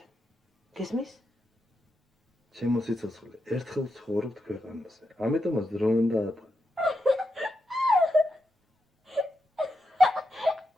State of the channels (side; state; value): both; normal; correlation 0.86